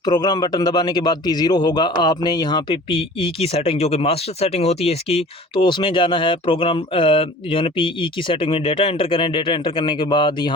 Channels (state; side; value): normal; both; correlation 0.44